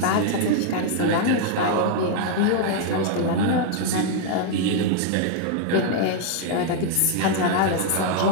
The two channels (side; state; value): both; different; correlation 0.00